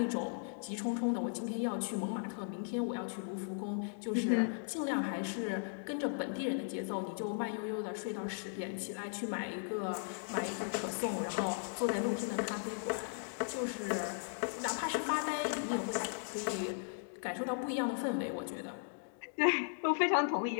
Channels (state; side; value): silent; right; digital silence